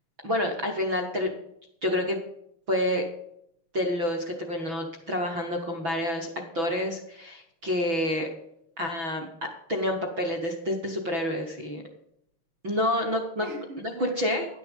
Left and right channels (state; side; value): late; left; 6.1 ms